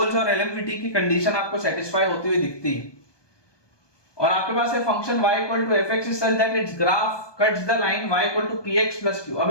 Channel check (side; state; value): right; late; 1.2 ms